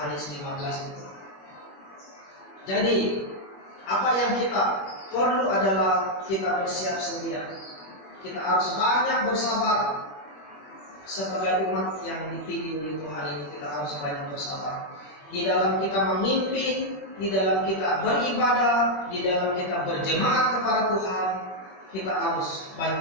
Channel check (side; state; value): right; late; 21 ms